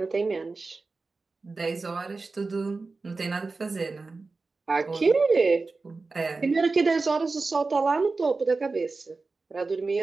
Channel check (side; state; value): left; quieter; 3.9 dB